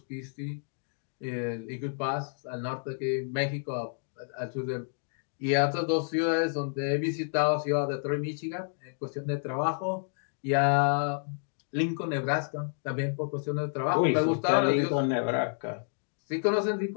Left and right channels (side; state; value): right; silent; digital silence